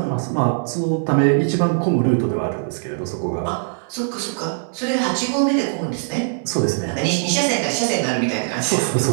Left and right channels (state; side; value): silent; left; 64 dB below the other